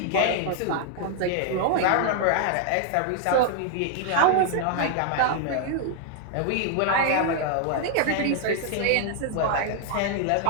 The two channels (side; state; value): both; different; correlation 0.00